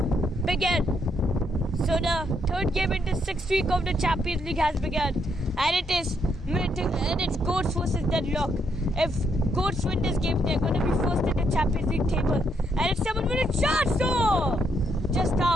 begin. So the third game in the 6th week of the Champions League has begun, and it's Goats versus Deadlock. If Goats win this game, they're going to be first in the Champions League table, and it's someone with a chance. Oh, just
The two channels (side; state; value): both; normal; correlation 0.75